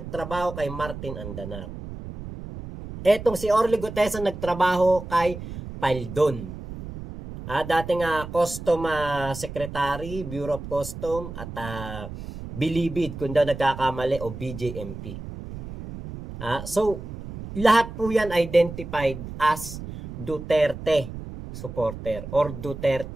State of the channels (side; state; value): right; noise; rumble, 10 dB below the sound